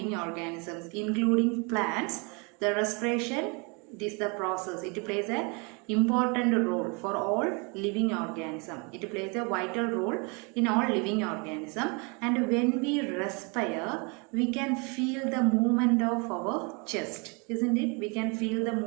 organisms, including plants. The respiration, this is the process. It plays an important role for all living organism. It plays a vital role in all living organism. And when we respire, we can feel the movement of our chest, isn't it? We can feel the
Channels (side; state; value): left; quieter; 31.8 dB